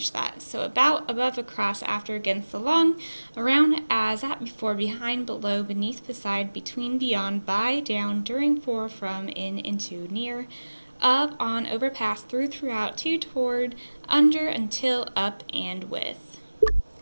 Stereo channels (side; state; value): both; inverted; correlation -1.00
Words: that. So about, above, across, after, against, along, around, as, at, before, behind, below, beneath, beside, between, beyond, by, down, during, for, from, in, into, near, of, on, over, past, through, throughout, to, toward, under, until, up, and with.